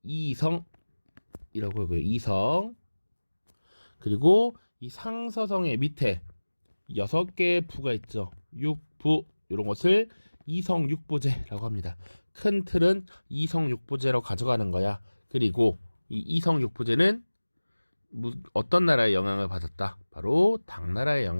이성이라고 하고요. 이성. 그리고 이 상서성의 밑에 6개의 부가 있죠. 육부, 이런 것을 이성육부제라고 합니다. 큰 틀은 이성육부제로 가져가는 거야. 그리고 이 이성육부제는 어떤 나라의 영향을 받았다? 바로 당나라의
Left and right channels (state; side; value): inverted; both; correlation -1.00